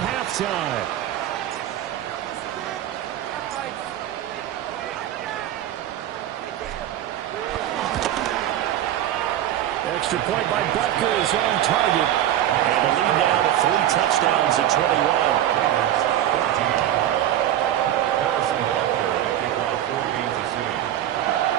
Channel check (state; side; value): quieter; left; 12.0 dB